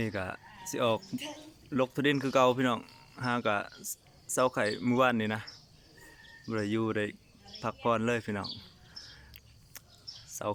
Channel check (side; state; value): both; identical; correlation 1.00